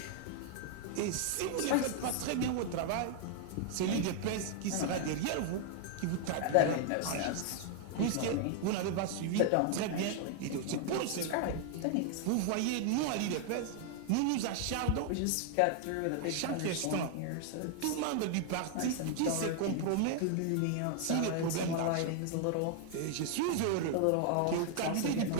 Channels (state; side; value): different; both; correlation 0.00